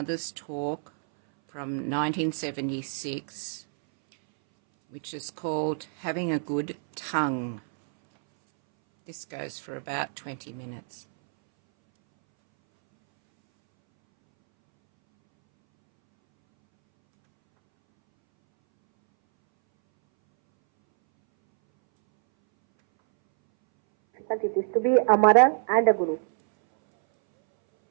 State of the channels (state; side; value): silent; left; 60 dB below the other